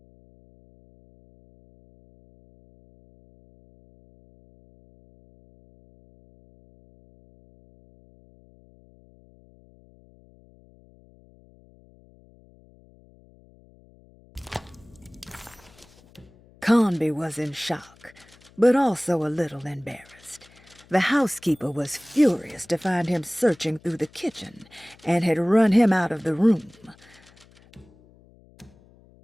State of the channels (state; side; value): noise; left; hum, 27 dB below the sound